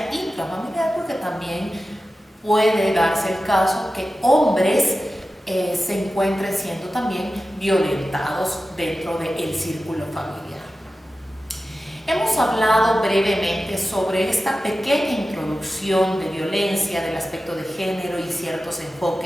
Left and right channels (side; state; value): both; normal; correlation 0.94